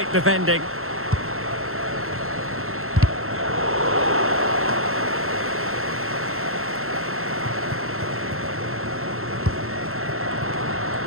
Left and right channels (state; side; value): late; left; 0.62 ms